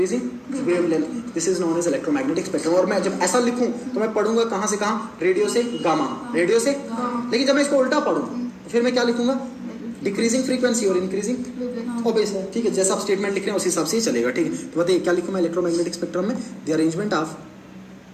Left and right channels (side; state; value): both; identical; correlation 1.00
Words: wavelength, this is known as electromagnetic spectrum। और मैं जब ऐसा लिखूं तो मैं पढ़ूंगा कहां से कहां, रेडियो से गामा, रेडियो से, लेकिन जब मैं इसको उल्टा पढ़ूं फिर मैं क्या लिखूंगा, डिक्रीजिंग फ्रीक्वेंसी और इंक्रीजिंग ओबेस है। ठीक है, जैसा आप स्टेटमेंट लिख रहे हैं उस हिसाब से ही चलेगा। ठीक है, तो बताइए क्या लिखूं मैं इलेक्ट्रोमैग्नेटिक स्पेक्ट्रम में, द